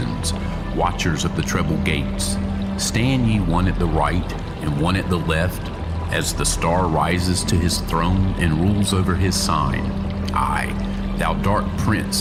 watchers of the treble gates, stand ye one at the right and one at the left, as the star rises to his throne and rules over his sign. Aye, thou dark prince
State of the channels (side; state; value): both; identical; correlation 1.00